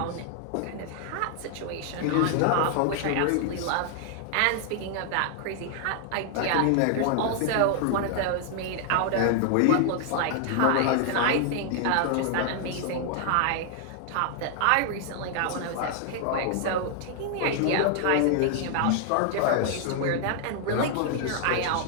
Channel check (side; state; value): both; different; correlation 0.00